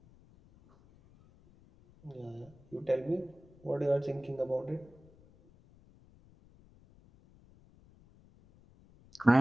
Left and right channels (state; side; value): noise; left; rumble, 26 dB below the sound